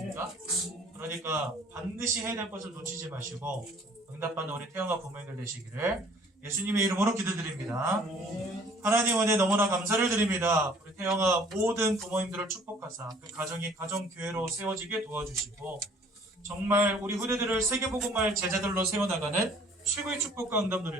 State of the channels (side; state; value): both; normal; correlation 0.55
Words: 그러니까 반드시 해야 될 것을 놓치지 마시고 응답받는 우리 태영아 부모님들 되시기를 예수님의 이름으로 기도드립니다. 하나님 은혜 너무나 감사를 드립니다. 우리 태영아 모든 부모님들을 축복하사 그 가정이 가정교회로 세워지게 도와주시고 정말 우리 후대들을 세계복음할 제자들로 세워나가는 최고의 축복과 응답